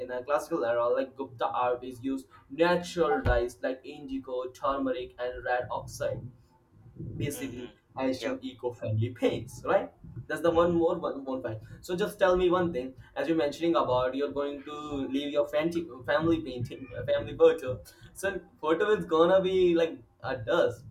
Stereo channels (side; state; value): both; identical; correlation 1.00